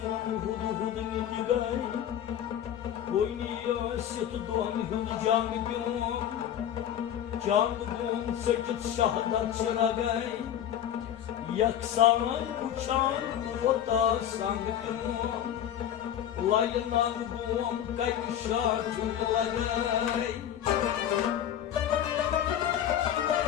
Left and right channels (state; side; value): quieter; right; 10.4 dB